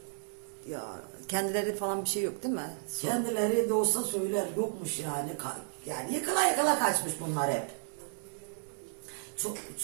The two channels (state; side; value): silent; left; digital silence